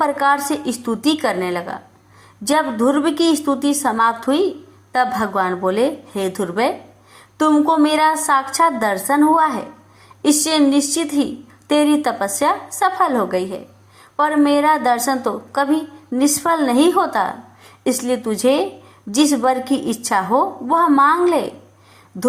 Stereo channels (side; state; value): both; identical; correlation 1.00